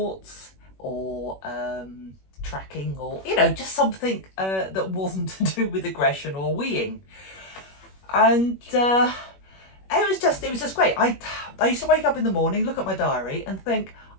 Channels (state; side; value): late; right; 21 ms